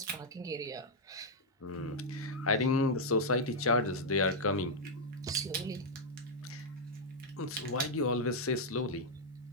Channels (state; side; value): normal; both; correlation -0.04